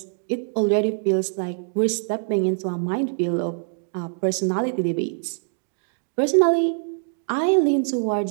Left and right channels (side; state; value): left; silent; digital silence